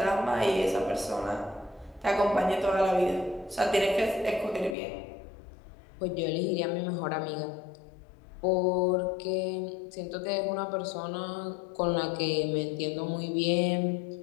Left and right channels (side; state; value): right; drops out; at 4.8 s